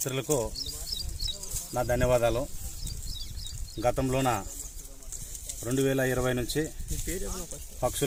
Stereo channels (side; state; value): both; identical; correlation 1.00